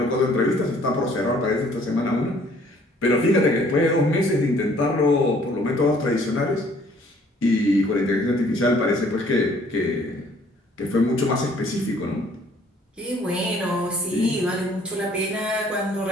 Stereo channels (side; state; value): both; normal; correlation 0.59